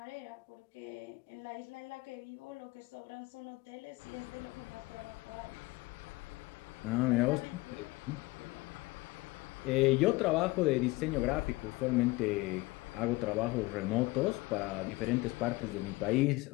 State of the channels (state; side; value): quieter; right; 21.5 dB